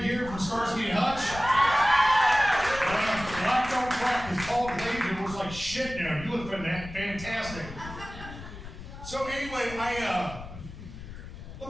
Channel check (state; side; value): noise; left; rumble, 13 dB below the sound